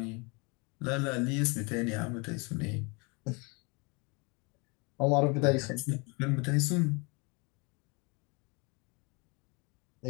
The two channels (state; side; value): quieter; right; 30.1 dB